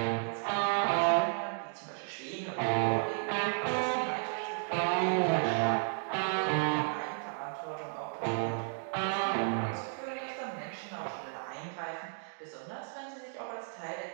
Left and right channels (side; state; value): left; silent; 55 dB below the other